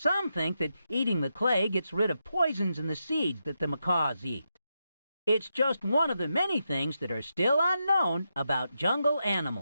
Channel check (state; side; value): inverted; both; correlation -0.85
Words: think that eating the clay gets rid of poisons in the seeds that the macaws eat. It's just one of the many things that are still unknown about jungle